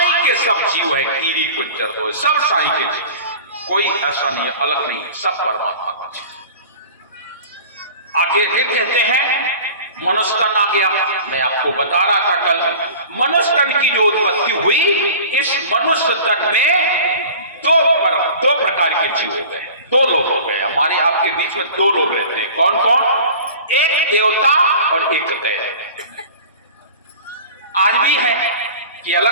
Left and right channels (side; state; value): both; inverted; correlation -0.40